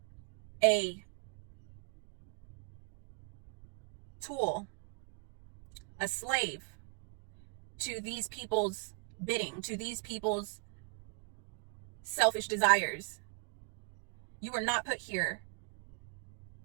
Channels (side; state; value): left; quieter; 35.4 dB